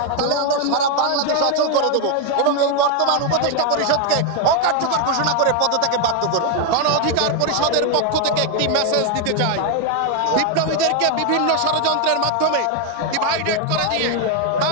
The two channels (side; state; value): both; different; correlation 0.01